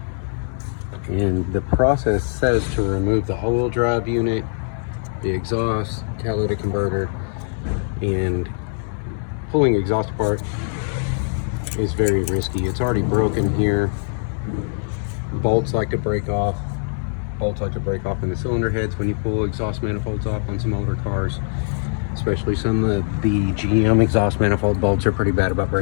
and the process says to remove the all-wheel drive unit, the exhaust, catalytic converter, and pulling exhaust apart is very risky. It's already broken here. Bolts like to break off. Bolts like to break off in the cylinder heads when you pull exhaust manifolds off on some older cars. Especially some of the GM exhaust manifold bolts are pretty bad about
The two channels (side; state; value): right; silent; digital silence